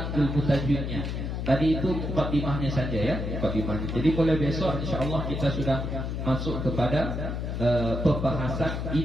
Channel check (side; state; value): left; noise; hum, 3 dB below the sound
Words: ilmu tajwidnya. Tadi itu muqaddimahnya saja ya, muqaddimahnya. Jadi mulai besok insyaallah kita sudah masuk kepada pembahasan